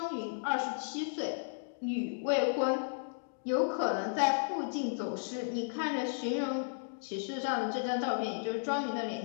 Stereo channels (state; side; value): silent; right; digital silence